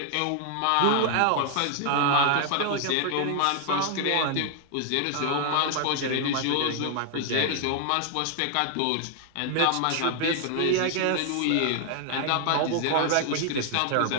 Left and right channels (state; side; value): different; both; correlation 0.00